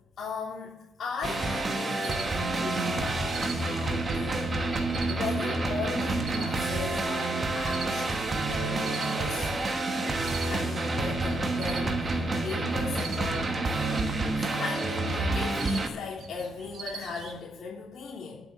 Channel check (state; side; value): normal; both; correlation 0.79